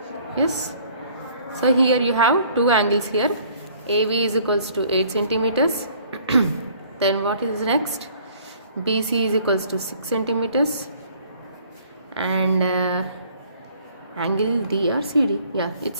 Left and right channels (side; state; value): both; inverted; correlation -0.57